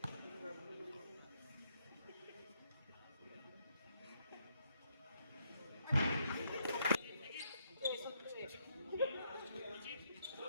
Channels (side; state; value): both; inverted; correlation -0.75